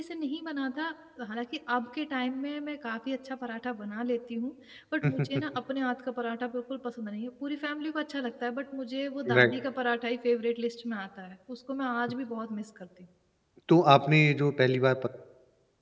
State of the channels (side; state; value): both; identical; correlation 1.00